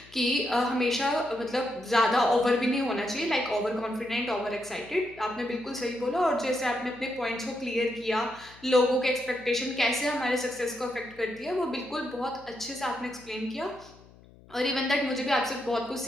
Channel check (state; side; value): noise; left; hum, 24 dB below the sound